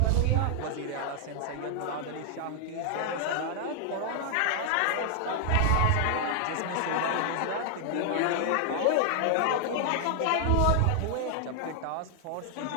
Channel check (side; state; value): both; different; correlation 0.00